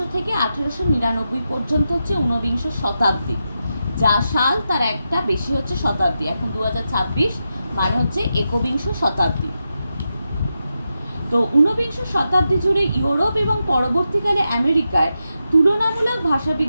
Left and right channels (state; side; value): inverted; both; correlation -0.88